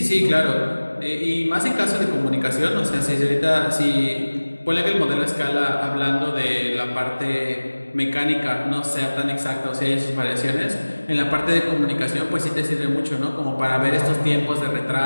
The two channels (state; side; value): inverted; both; correlation -1.00